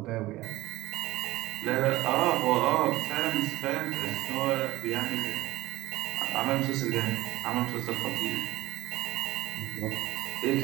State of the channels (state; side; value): quieter; left; 17.8 dB